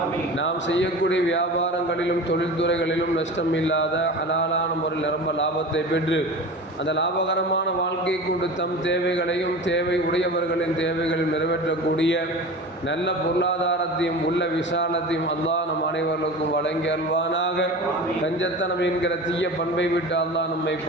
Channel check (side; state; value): both; normal; correlation 0.33